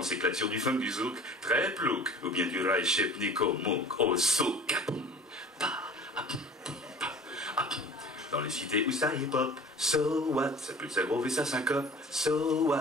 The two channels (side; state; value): both; normal; correlation 0.43